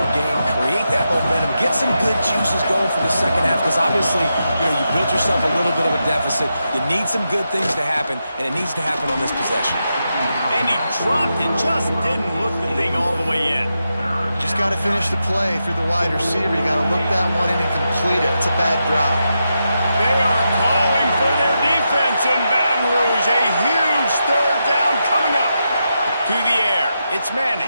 game, create that momentum, get some good juices going for the second half, because obviously, you built yourself a little bit of a deficit. You need some good things to happen, and it needs to happen on this possession. And he dropped it, just didn't look the thing all the way in. Just got to finish the play through the wide receiver. You got to look that one in and complete it. It's a bad drop. They are calling for their defense in Baton Rouge. A huge third down coming up. To the air, it's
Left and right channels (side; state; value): both; inverted; correlation -0.86